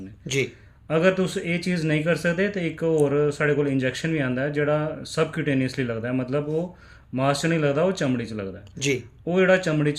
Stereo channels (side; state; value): both; identical; correlation 1.00